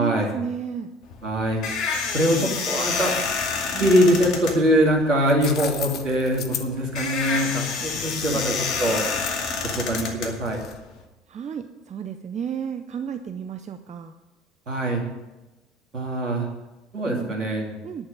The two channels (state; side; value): normal; both; correlation 0.49